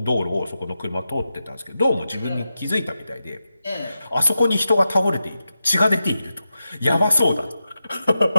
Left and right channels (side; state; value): both; inverted; correlation -0.90